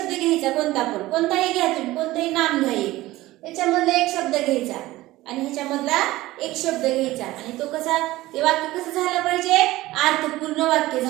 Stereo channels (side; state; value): left; quieter; 17.6 dB